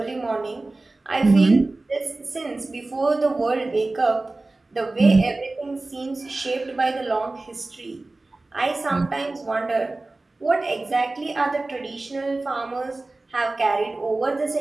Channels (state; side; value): quieter; left; 3.1 dB